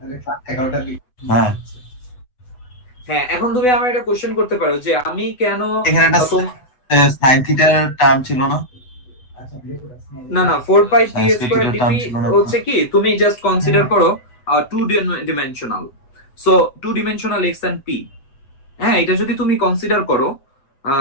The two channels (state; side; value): late; right; 8.0 ms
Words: ক্লাস 11টা হ্যাঁ হ্যাঁ, এখন তুমি আমার একটা কোশ্চেন করতে পারো যে আমি কেন এখানে একটা সাইন থিটার টার্ম ছিল না? না না 4 pi P Science square critical term DP ছিল না? হচ্ছে কি, তুমি জাস্ট কনসিডার করো two dimensional. So two dimensional X and P, হ্যাঁ, এটা যদি তুমি কনসিডার করো